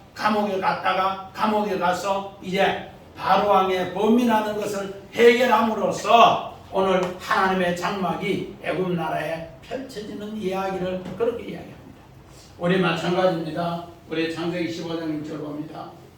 감옥에 갔다가 감옥에 가서 이제 바로왕의 범민하는 것을 해결함으로써 오늘 하나님의 장막이 애굽 나라에 펼쳐지는 이야기를 그렇게 이야기합니다. 우리 마찬가지입니다. 우리 창세기 15장 1절 봅니다.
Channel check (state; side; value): identical; both; correlation 1.00